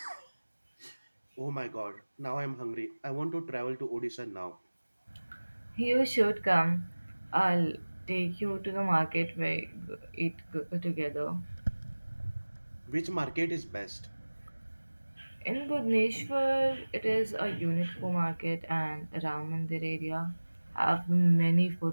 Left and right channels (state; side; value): inverted; both; correlation -1.00